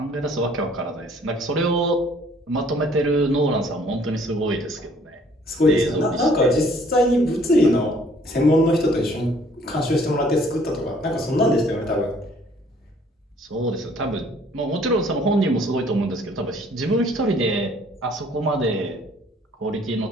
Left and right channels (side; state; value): both; normal; correlation 0.59